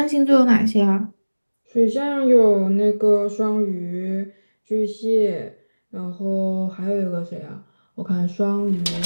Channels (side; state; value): both; inverted; correlation -1.00